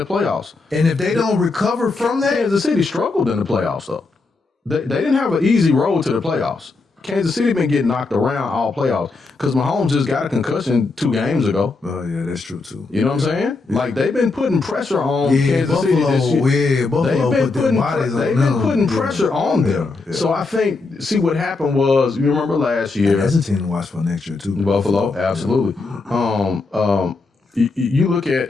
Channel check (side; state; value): right; quieter; 3.8 dB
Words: playoffs. And if they don't recover from that, Kansas City struggled in the playoffs, though. They didn't have an easy road to the playoffs. Kansas City been getting knocked around all playoffs because Mahomes just got a concussion 2 games ago. Oh, yeah, that's true, too. You know what I'm saying? Yeah. Like, they've been putting pressure on Kansas City this year. Yeah, Buffalo they've been putting pressure on them. Yeah. So I think, see what happened was, you remember last year. That's a team to watch for next year, too. Buffalo, absolutely. You look